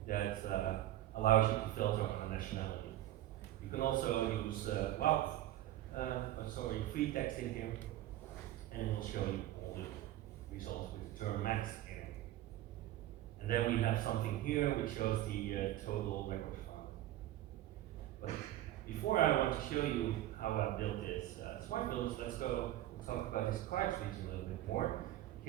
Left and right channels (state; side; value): quieter; left; 14.1 dB